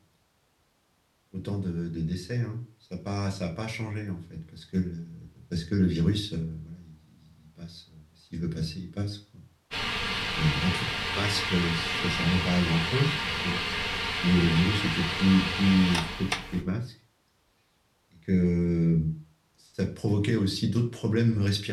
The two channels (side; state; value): both; identical; correlation 1.00